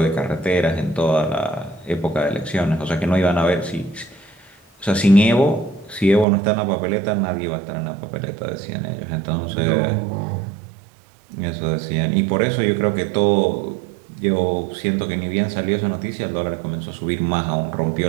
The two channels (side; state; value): left; drops out; at 6.2 s